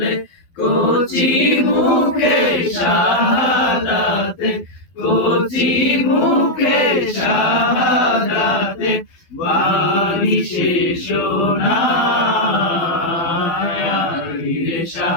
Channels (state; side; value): late; right; 12 ms